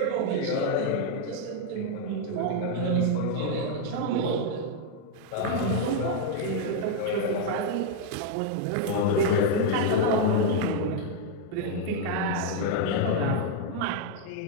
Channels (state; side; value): different; both; correlation 0.00